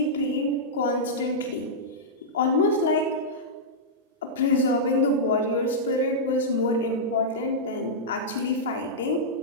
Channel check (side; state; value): both; normal; correlation -0.10